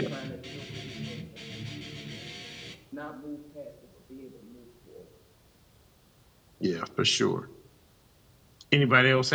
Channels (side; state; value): both; identical; correlation 1.00